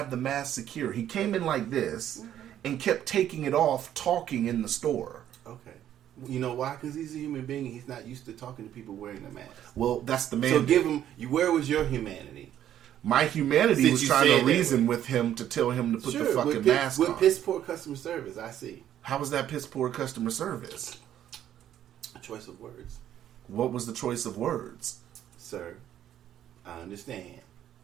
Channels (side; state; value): left; quieter; 11.1 dB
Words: the mask secure. He came in like this and kept taking it off, talking in the store. Okay. You know why? Because he's a human being and he's not used to talking to people wearing the mask. Well, that's the man. So give him, where was your humanity? My humanity Since was you trying said to reason with him to tell him to put the fucking mask on. With piss poor customer service, I see. How was that piss poor customer service? A choice of words. What was the choice of words? Sir, I understand.